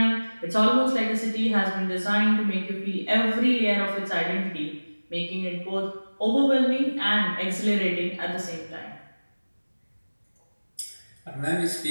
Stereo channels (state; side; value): inverted; both; correlation -1.00